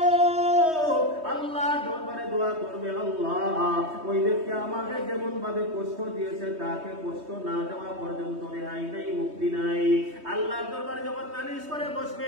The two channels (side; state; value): left; late; 3.2 ms